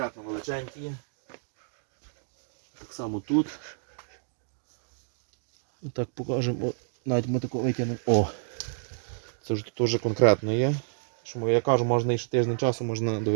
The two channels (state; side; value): silent; left; digital silence